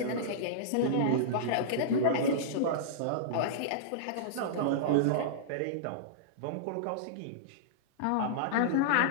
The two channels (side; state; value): both; different; correlation -0.03